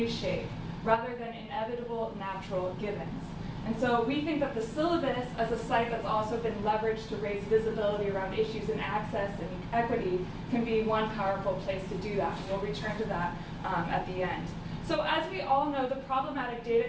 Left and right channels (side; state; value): both; identical; correlation 1.00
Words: rather than inevitable natural givens. And so we think that the Syllabus, as a site that's also been leveraged to raise visibility around issues in access and equity, can be one powerful place to do that. And we'll return to that at the end. So as we all know, the problematic